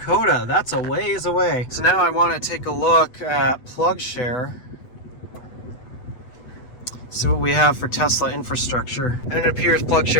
That's a ways away. So now I want to take a look at PlugShare. See what we have for Tesla infrastructure. And it appears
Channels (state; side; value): late; right; 8.1 ms